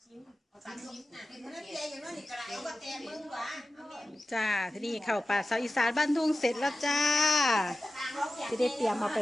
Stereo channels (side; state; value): both; normal; correlation 0.95